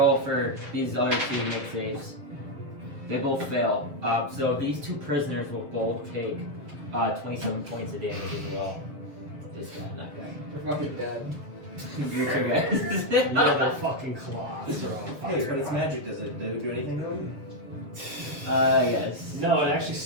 for these other two to make saves. They both fail. So these two prisoners will both take 27 points of damage as well. This guy, that guy. They're fucking dead. You two guys. Yeah, their fucking claws are on fire. Hey, but it's magic. Does it do anything to them? Yes. No, it actually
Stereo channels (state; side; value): late; left; 7.2 ms